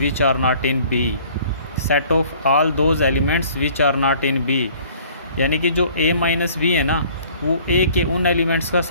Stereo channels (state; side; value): inverted; both; correlation -0.54